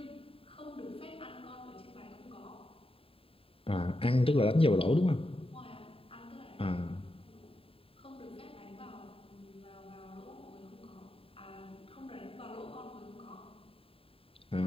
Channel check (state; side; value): late; right; 0.27 ms